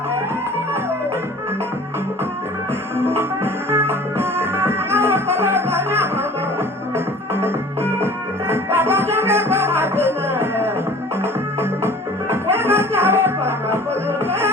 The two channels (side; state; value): both; normal; correlation 0.46